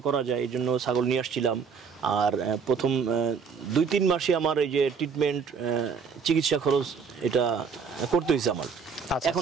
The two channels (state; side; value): quieter; left; 5.9 dB